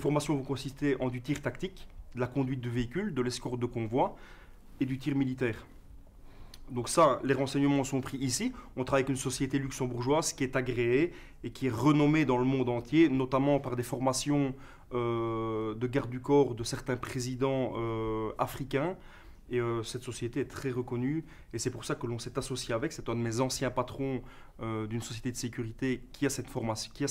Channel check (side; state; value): both; identical; correlation 1.00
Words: vont consister en du tir tactique, de la conduite de véhicules, de l'escorte de convoi et du tir militaire. Donc ça, les renseignements sont pris ici. On travaille avec une société luxembourgeoise qui est agréée et qui est renommée dans le monde entier, notamment par des formations de garde du corps de certains présidents africains. Et cette société est très reconnue et c'est pour ça que l'on s'est associé avec. C'est un de mes anciens patrons d'une société de sécurité qui a cette formation, qui a